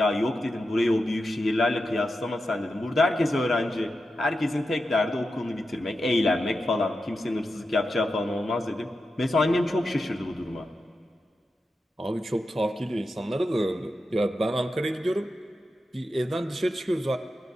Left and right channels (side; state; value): both; normal; correlation 0.89